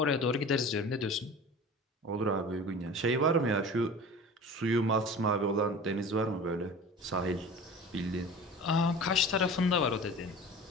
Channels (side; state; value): both; normal; correlation 0.38